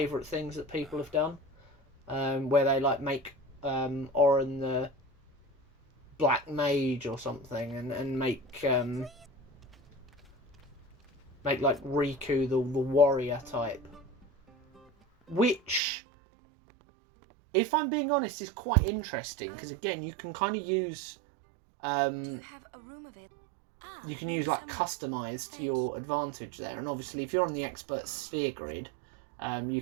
things that people have done. Where they like make Oran the Black Mage or something. And make like Riku the warrior type. Which, if I'm being honest, is quite interesting. Because again, you can kind of use... you can use like Customise to your advantage there. And obviously if you're on the expert sphere grid, you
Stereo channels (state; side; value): drops out; left; at 15.8 s